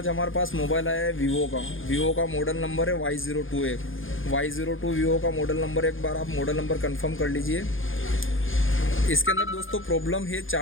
हमारे पास मोबाइल आया है वीवो का मॉडल नंबर है Y02 है। Y02 वीवो का मॉडल नंबर, एक बार आप मॉडल नंबर कंफर्म कर लीजिए। इसके अंदर दोस्तों प्रॉब्लम है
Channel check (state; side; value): late; right; 0.58 ms